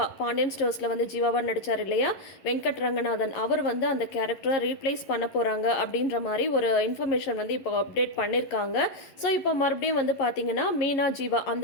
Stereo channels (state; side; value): late; right; 11 ms